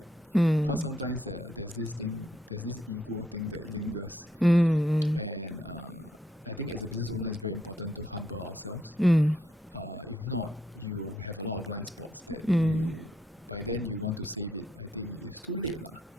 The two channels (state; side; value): normal; both; correlation 0.74